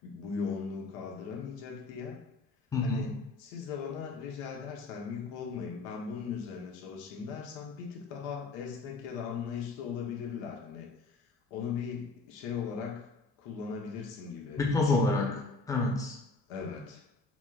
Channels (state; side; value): quieter; right; 3.7 dB